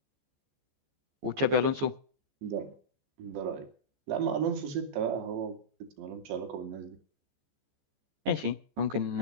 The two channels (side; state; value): left; late; 14 ms